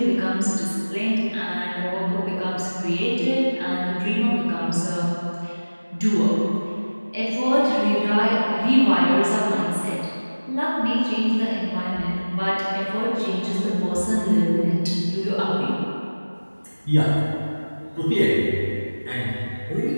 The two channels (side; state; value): both; inverted; correlation -1.00